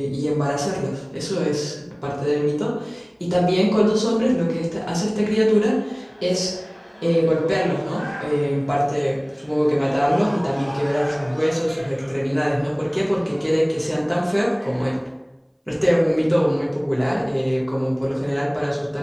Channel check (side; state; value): both; identical; correlation 1.00